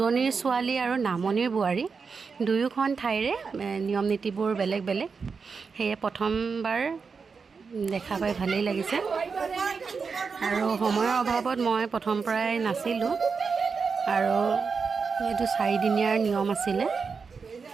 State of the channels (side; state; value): left; quieter; 5.2 dB